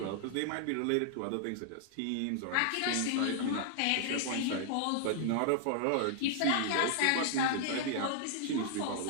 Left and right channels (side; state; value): both; different; correlation -0.01